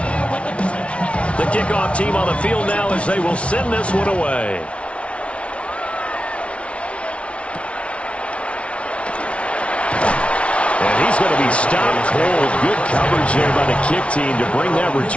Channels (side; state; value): right; late; 0.061 ms